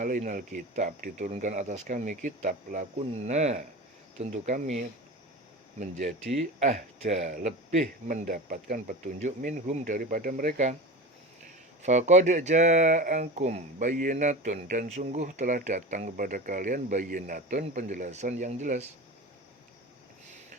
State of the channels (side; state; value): both; normal; correlation 0.30